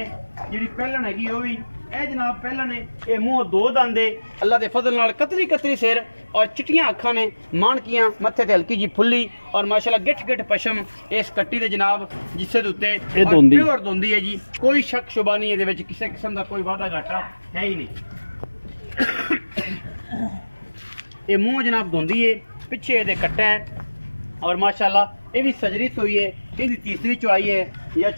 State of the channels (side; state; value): both; inverted; correlation -1.00